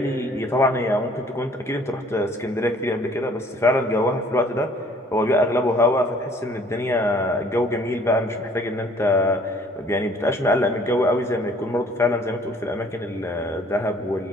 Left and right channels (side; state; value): both; normal; correlation 0.57